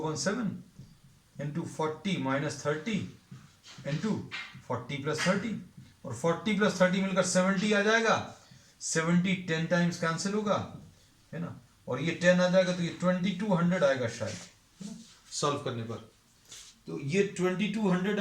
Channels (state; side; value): identical; both; correlation 1.00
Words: इंटू 40 माइनस 30 इंटू 40 प्लस 30, और 40 प्लस 30 मिलकर 70 आ जाएगा। 70 10 टाइम्स कैंसिल होगा, है ना, और ये 10 आ जाएगा, तो ये 2200 आएगा शायद सॉल्व करने पर। तो ये 2200